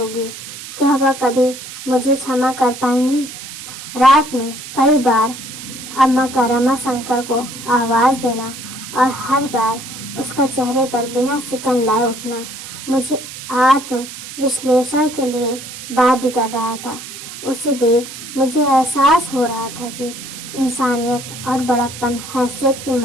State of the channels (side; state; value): right; noise; hiss, 12 dB below the sound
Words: क्या वह कभी मुझे क्षमा कर पाएंगी? रात में कई बार अम्मा का रमाशंकर को आवाज देना और हर बार उसका चेहरे पर बिना सिकन लाए उठना मुझे आत्म विश्लेषण के लिए बाध्य कर रहा था। उसे देख मुझे एहसास हो रहा था कि इंसानियत और बड़प्पन हैसियत की